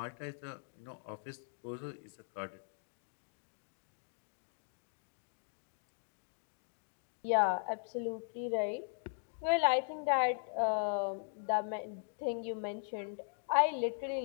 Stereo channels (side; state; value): right; silent; digital silence